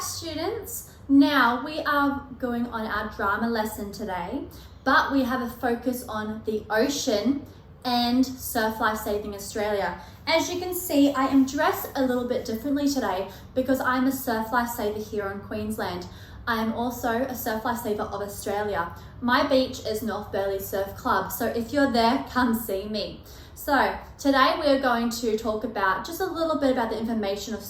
students. Now we are going on our drama lesson today, but we have a focus on the ocean and Surf Life Saving Australia. As you can see, I am dressed a little bit differently today because I'm a surf lifesaver here in Queensland. I am also a surf lifesaver of Australia. My beach is North Burleigh Surf Club, so if you're there, come see me. So today we are going to talk about just a little bit about the information of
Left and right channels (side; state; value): both; identical; correlation 1.00